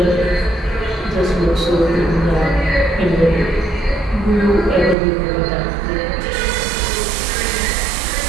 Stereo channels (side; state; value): left; drops out; at 5.0 s